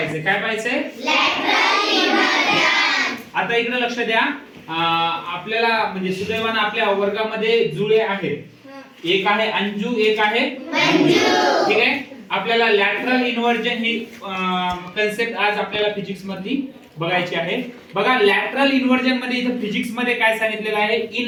काय पाहिजे? Lateral inversion. आता इकडे लक्ष द्या. आपल्याला म्हणजे सुदैवाने आपल्या वर्गामध्ये जुळे आहेत. एक आहे अंजू, एक आहे मंजू. ठीक आहे. आपल्याला लॅटरल इन्व्हर्जन ही कन्सेप्ट आज आपल्याला फिजिक्स मधली बघायची आहे. बघा लॅटरल इन्व्हर्जन मध्ये इथे फिजिक्स मध्ये काय सांगितलेलं आहे?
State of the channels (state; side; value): identical; both; correlation 1.00